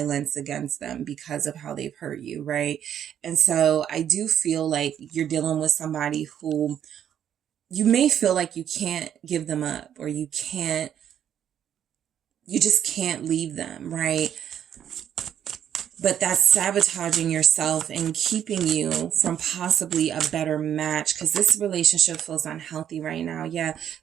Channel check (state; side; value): quieter; left; 9.7 dB